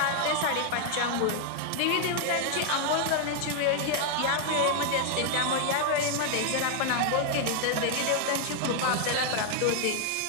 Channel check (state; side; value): different; both; correlation 0.00